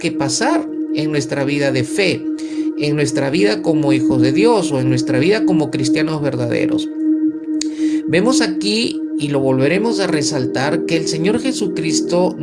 pasar en nuestra vida de fe, en nuestra vida como hijos de Dios o en nuestra vida como cristianos verdaderos? Vemos aquí, y lo volveremos a resaltar, que el Señor Jesucristo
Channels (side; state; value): both; identical; correlation 1.00